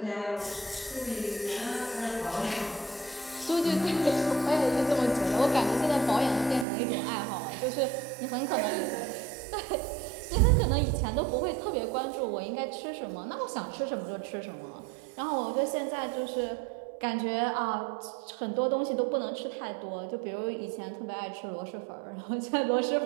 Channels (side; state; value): left; drops out; at 6.7 s